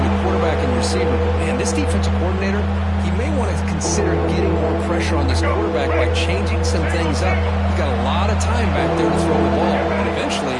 the quarterback and receiver. Man, this defensive coordinator, he may want to consider getting more pressure on this quarterback by changing some things up. You've got a lot of time back there to throw the ball, and eventually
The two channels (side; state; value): both; identical; correlation 1.00